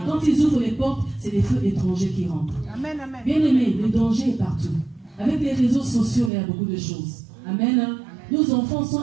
quand ils ouvrent les portes, c'est les feux étrangers qui rentrent. Amen, amen. Bien aimé, le danger est partout. Avec les réseaux sociaux, il y a beaucoup de choses. Amen. Hein? Nos enfants sont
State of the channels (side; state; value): left; drops out; at 6.3 s